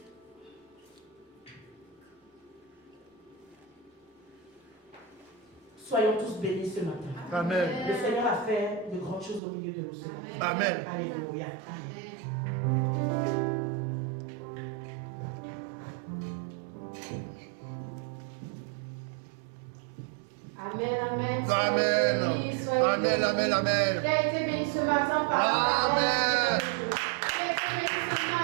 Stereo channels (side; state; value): left; drops out; at 9.4 s